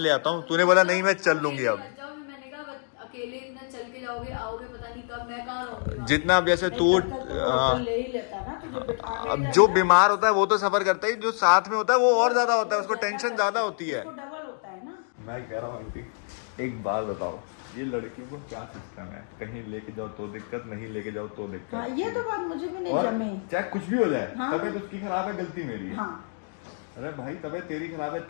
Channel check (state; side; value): silent; right; 60 dB below the other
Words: आता हूँ, तूने बोला नहीं मैं चल लूंगी। अब मैंने कहा अकेले इतना चल के जाओगे, आओगे पता नहीं कब, मैं कहाँ रहूंगी। जितना अब जैसे तू ले ही लेता ना तुझे बिठा के। अब जो बीमार होता है वो तो सफर करता है, जो साथ में होता है वो और ज्यादा होता है, उसको टेंशन ज्यादा होती है। डबल होता है ना। मैं कह रहा हूँ आंटी, एक बात बताओ, ये लड़कियों को क्या सिस्टम है, कहीं लेके जाओ तो दिक्कत, नहीं लेके जाओ तो दिक्कत। हाँ, ये तो बात मुझे भी नहीं और जमे। चाहे कुछ भी हो जाए, हाँ। तबीयत उसकी खराब है, गलती मेरी है। हाँ। अरे भाई तबीयत तेरी खराब है,